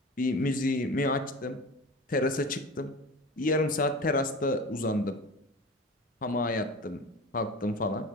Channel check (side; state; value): both; normal; correlation 0.33